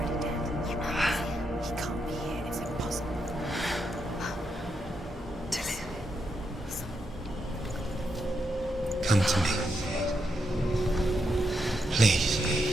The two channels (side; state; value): both; normal; correlation 0.82